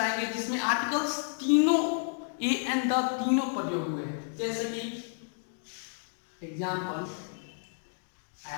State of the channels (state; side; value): silent; right; 57 dB below the other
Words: जिसमें आर्टिकल्स तीनों ए एंड द तीनों प्रयोग हुए हैं. जैसे कि example,